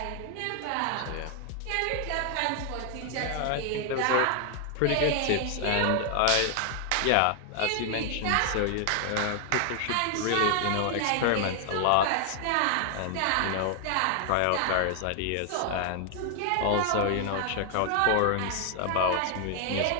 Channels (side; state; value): both; different; correlation 0.00